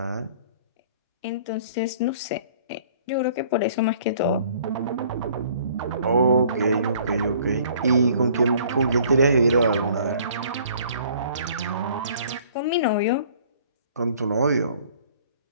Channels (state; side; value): inverted; both; correlation -0.55